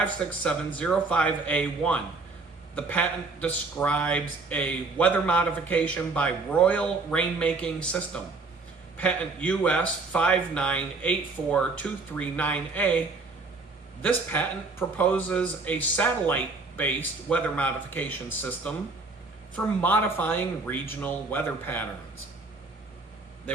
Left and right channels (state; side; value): quieter; left; 3.7 dB